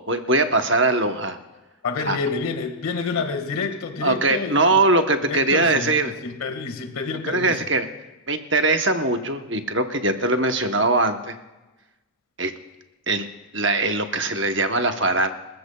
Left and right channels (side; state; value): both; normal; correlation -0.13